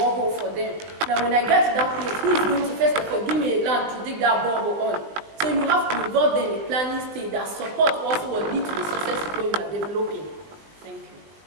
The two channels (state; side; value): late; left; 19 ms